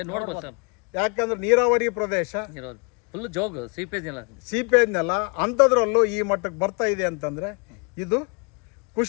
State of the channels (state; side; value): quieter; right; 34.6 dB